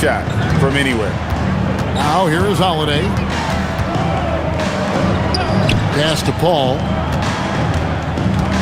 from anywhere. Now here is Holiday. Pass to Paul.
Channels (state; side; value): identical; both; correlation 1.00